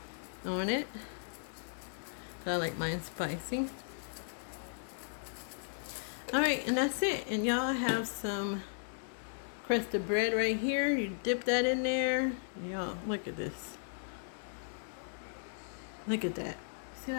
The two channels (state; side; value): silent; right; 54 dB below the other